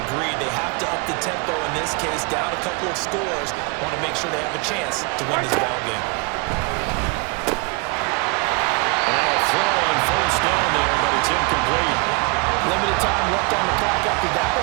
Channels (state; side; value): quieter; left; 30.5 dB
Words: agreed. They have to up the tempo in this case, down a couple of scores. Want to make sure they have a chance to win this ball game. Throw on first down there, but it's incomplete. Limited time left on the clock after that